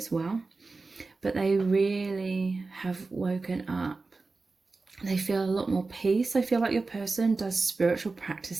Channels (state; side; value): quieter; left; 3.8 dB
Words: well, but they really have woken up. They feel a lot more peace. I feel like your person does spiritual